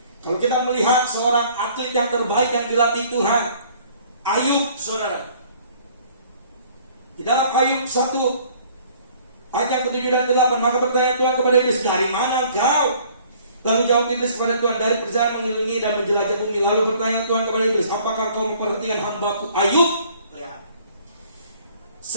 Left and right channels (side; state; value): both; inverted; correlation -0.56